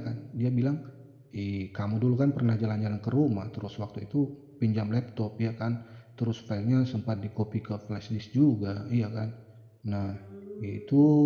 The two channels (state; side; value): identical; both; correlation 1.00